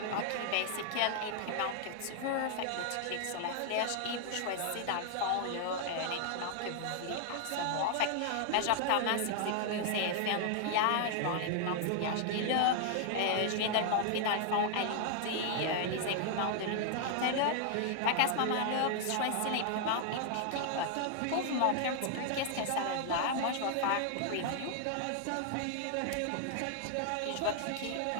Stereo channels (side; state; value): both; different; correlation 0.00